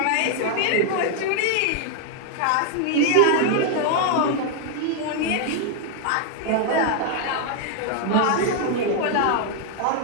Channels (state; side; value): different; both; correlation 0.00